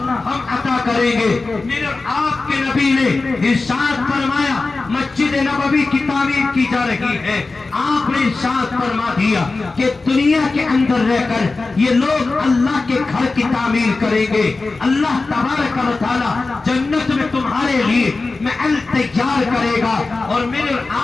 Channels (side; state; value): right; quieter; 3.7 dB